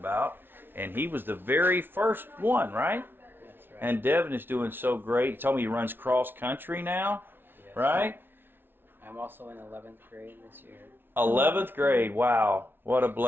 And he was the very first one, right? That's right. And Devin is doing so great. He told me he runs cross country now, Yes. right? I'm also in 11th grade this year. 11th grade, wow, what a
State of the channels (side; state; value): left; late; 0.10 ms